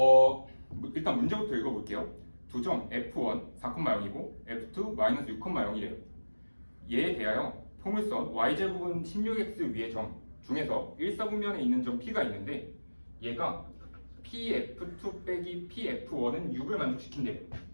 일단 문제부터 읽어볼게요. 두 점 F1 4,0이고 F2 마이너스 6,0이래요. 얘에 대하여 포물선 y제곱은 16x 위의 점 중에서 1사분면에 있는 점 P가 있는데 얘가 PF2 빼기 PF1은 6을 만족시킨대요.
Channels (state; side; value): inverted; both; correlation -1.00